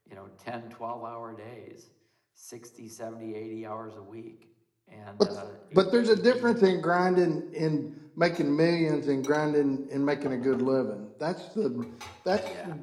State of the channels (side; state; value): both; identical; correlation 1.00